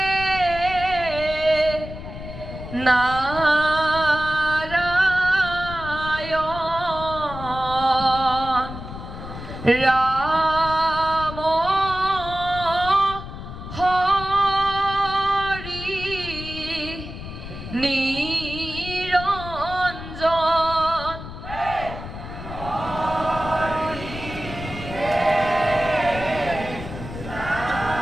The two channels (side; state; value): left; noise; rumble, 11 dB below the sound